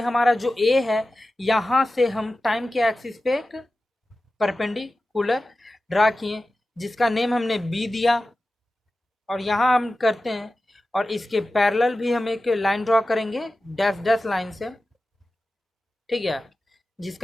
हमारा जो ए है, यहाँ से हम टाइम के एक्सिस पे एक परपेंडिकुलर ड्रा किए, जिसका नेम हमने बी दिया, और यहाँ हम करते हैं, और इसके पैरेलल भी हम एक लाइन ड्रॉ करेंगे डैश डैश लाइन से, ठीक है,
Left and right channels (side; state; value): both; normal; correlation 0.94